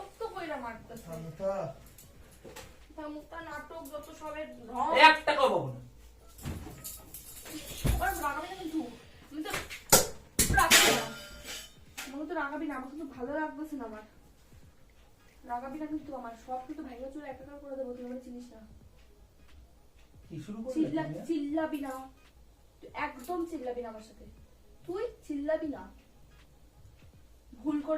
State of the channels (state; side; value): identical; both; correlation 1.00